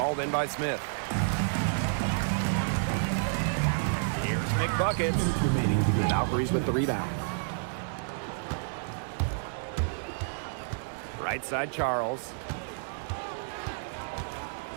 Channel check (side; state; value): left; silent; 58 dB below the other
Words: in by Smith. here's McBuckets. Valkyries with the rebound. Right side Charles.